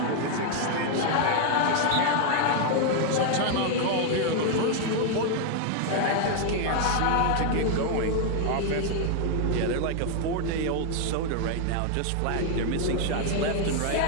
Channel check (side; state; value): both; different; correlation 0.00